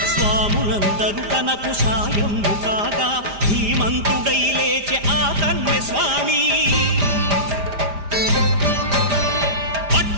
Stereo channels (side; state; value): left; late; 5.0 ms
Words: స్వాములందరూ తనకు సాయము కాగా ధీమంతుడై లేచే ఆ కన్య స్వామి